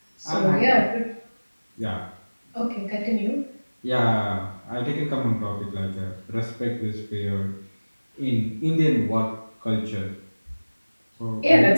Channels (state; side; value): inverted; both; correlation -1.00